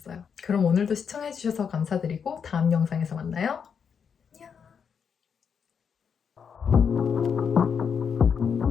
그럼 오늘도 시청해주셔서 감사드리고 다음 영상에서 만나요. 안녕!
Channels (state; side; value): quieter; right; 6.8 dB